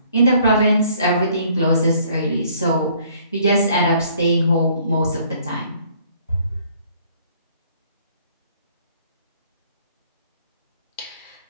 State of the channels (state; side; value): inverted; both; correlation -0.60